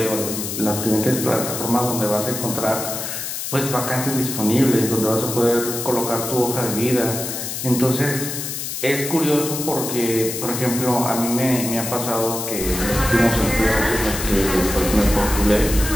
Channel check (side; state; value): left; noise; hiss, 5 dB below the sound